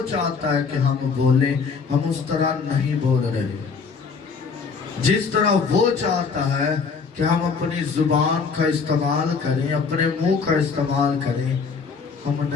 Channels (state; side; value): quieter; right; 5.2 dB